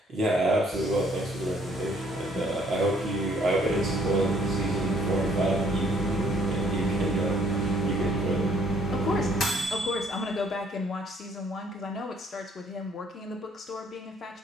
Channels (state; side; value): normal; both; correlation 0.63